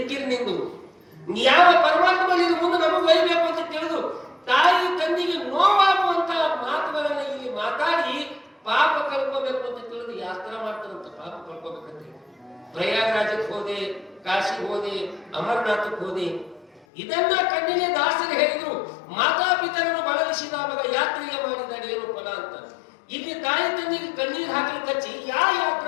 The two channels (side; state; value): right; drops out; at 16.9 s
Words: ನಿಂದು? ಯಾವ ಪರಮಾತ್ಮ ಇದು ಮುಂದೆ ನಮಗೆ ಒಯ್ಯಬೇಕು ಅಂತ ತಿಳಿದು ತಾಯಿ ತಂದಿಗೆ ನೋವಾಗುವಂತ ಮಾತುಗಳನ್ನ ಇಲ್ಲಿ ಮಾತಾಡಿ ಪಾಪ ಕಳ್ಕೋಬೇಕು ಅಂತ ತಿಳಿದು ಯಾಸ್ತ್ರ ಮಾಡ್ತಾರಂತ. ಪಾಪ ಕಳ್ಕೋಬೇಕಂತ ಪ್ರಯಾಗರಾಜಕ್ಕೆ ಹೋದೆ, ಕಾಶಿಗೆ ಹೋದೆ, ಅಮರನಾಥಕ್ಕೆ ಹೋದೆ. ಇದನ್ನ ಕಣ್ಣಿಗೆ ದಾಸರು ಹೇಳಿದ್ರು. ಮಾತಾಪಿತರನ್ನು ಬಳಲಿಸಿದ ಮಗ ಯಾತ್ರೆಗೆ ಮಾಡಿದಾಗ ಏನು ಫಲ ಅಂತ. ಇಲ್ಲಿ ತಾಯಿ ತಂದಿಗೆ ಕಣ್ಣೀರು ಹಾಕಲಿಕ್ಕೆ ಹಚ್ಚಿ